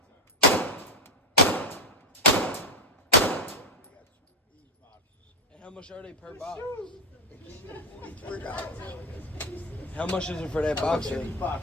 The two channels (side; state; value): both; normal; correlation 0.07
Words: much are they per box? How much is it for that box?